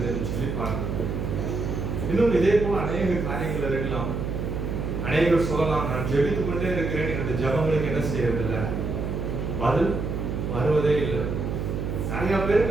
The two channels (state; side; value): noise; right; hum, 3 dB below the sound